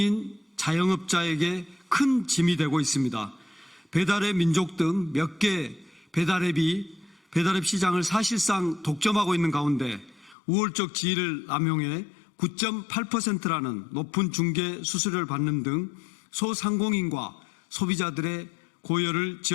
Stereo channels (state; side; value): drops out; right; at 10.4 s